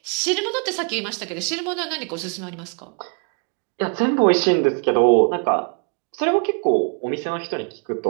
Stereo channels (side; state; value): left; quieter; 37.6 dB